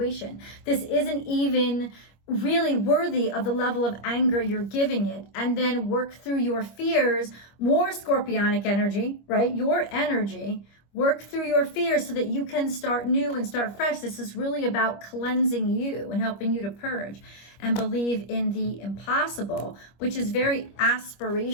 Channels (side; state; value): right; late; 25 ms